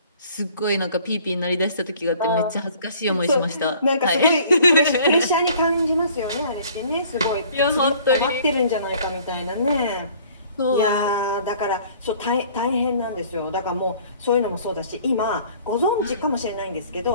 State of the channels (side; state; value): both; inverted; correlation -0.53